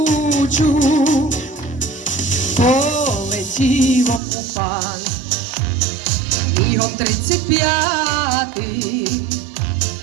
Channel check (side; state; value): left; drops out; at 4.2 s